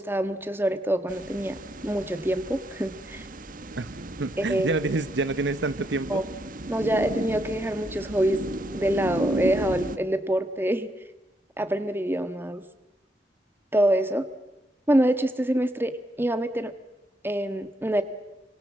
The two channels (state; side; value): normal; both; correlation 0.77